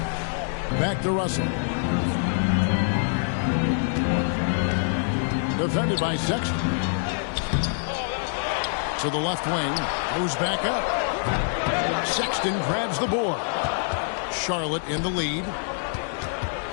Back to Russell. Defended by Sexton. To the left wing. Goes back up. Sexton grabs the board. Charlotte in the lead.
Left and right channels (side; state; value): right; silent; digital silence